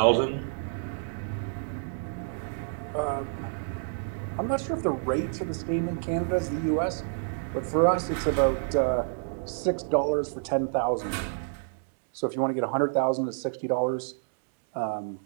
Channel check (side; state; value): left; silent; digital silence